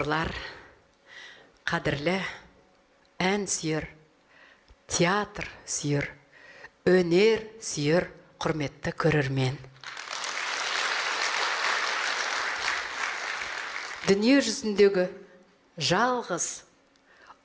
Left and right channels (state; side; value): identical; both; correlation 1.00